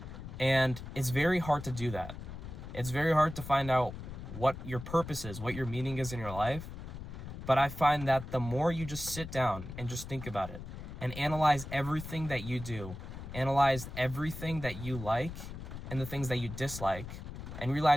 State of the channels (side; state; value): left; noise; rumble, 10 dB below the sound